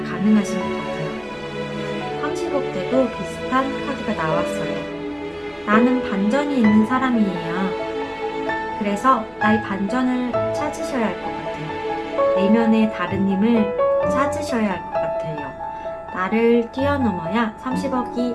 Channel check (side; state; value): both; identical; correlation 1.00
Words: 것 같아요. 30억 때도 비슷한 카드가 나왔어요. 나는 반전이 있는 사람이에요. 그래서 나의 반전을 찾으셔야 할 것 같아요. 내면의 다른 힘을 찾으셔야 할 것 같아요. 나를 뛰어넘어야